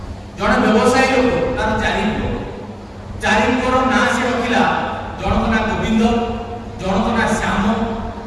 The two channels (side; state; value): both; identical; correlation 1.00